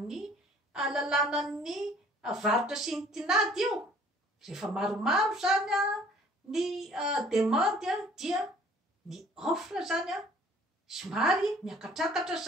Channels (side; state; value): both; normal; correlation 0.54